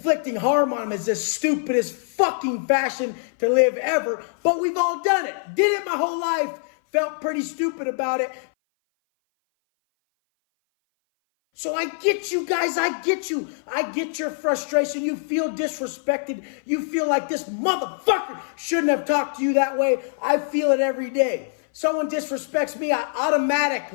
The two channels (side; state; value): right; silent; 58 dB below the other